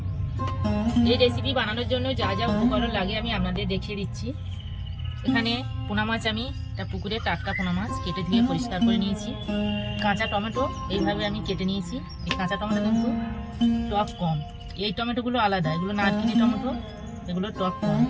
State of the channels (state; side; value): identical; both; correlation 1.00